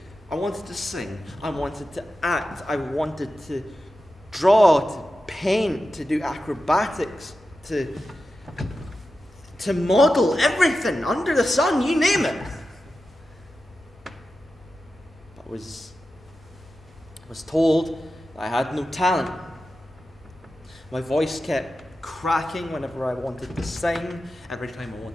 sing. I wanted to act. I wanted to draw, to paint, to do acrobatics, to model everything under the sun, you name it. I was told I had no talent. My voice kept cracking whenever I wanted to sing. Every time I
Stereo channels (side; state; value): both; normal; correlation 0.92